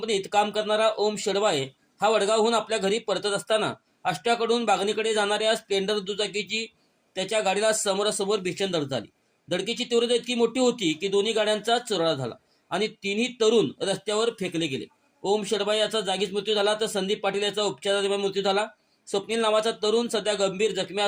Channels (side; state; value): both; identical; correlation 1.00